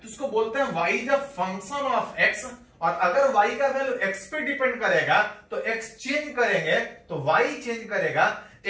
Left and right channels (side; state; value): both; identical; correlation 1.00